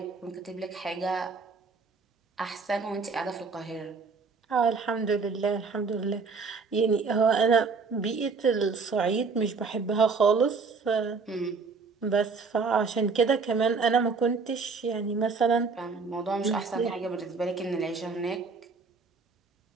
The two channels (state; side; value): quieter; left; 4.7 dB